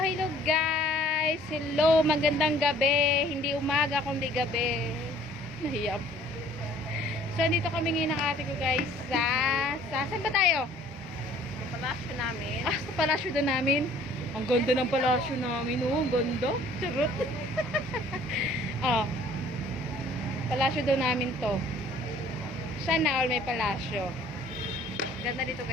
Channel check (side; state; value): both; normal; correlation 0.54